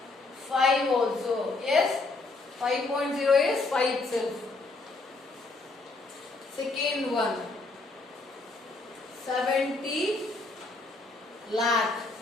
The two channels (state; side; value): quieter; right; 3.5 dB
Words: 5 also. Yes? 5.0 is 5 itself. Second one, 70 lakh.